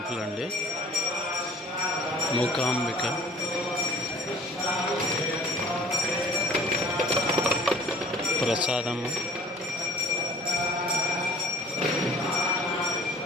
అండి మూకాంబిక. ప్రసాదము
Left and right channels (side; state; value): both; normal; correlation 0.48